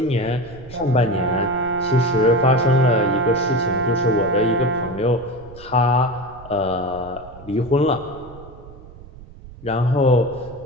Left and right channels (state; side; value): noise; right; rumble, 19 dB below the sound